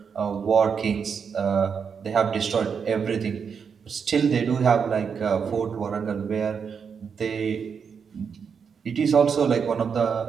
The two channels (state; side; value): quieter; left; 6.4 dB